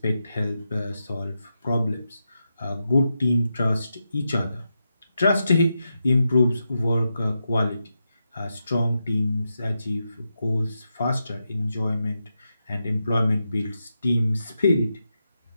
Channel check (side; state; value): both; inverted; correlation -0.87